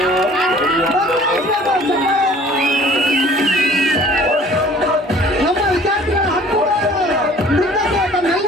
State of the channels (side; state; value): both; normal; correlation 0.51